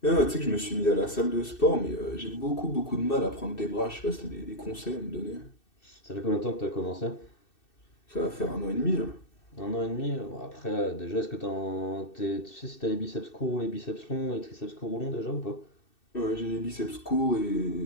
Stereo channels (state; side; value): late; right; 2.6 ms